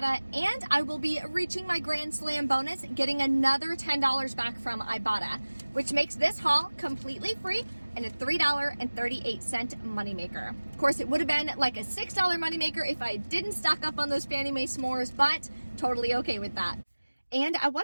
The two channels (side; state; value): both; inverted; correlation -1.00